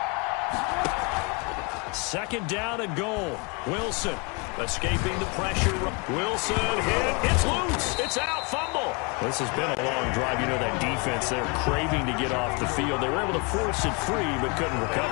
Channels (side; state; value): right; quieter; 30.8 dB